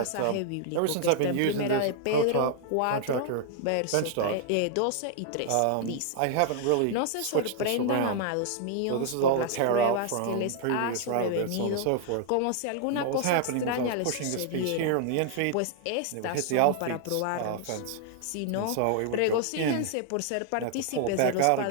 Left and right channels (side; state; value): both; different; correlation 0.00